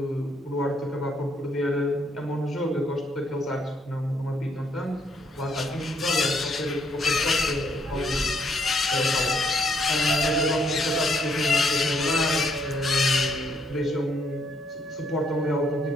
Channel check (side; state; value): both; normal; correlation 0.70